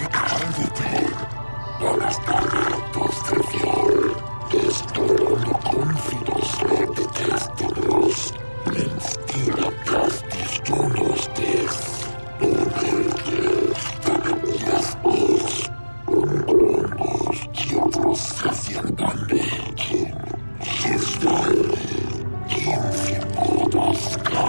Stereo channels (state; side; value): inverted; both; correlation -1.00